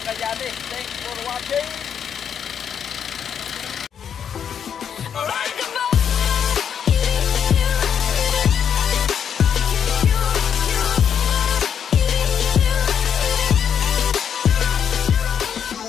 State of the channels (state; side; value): quieter; right; 8.1 dB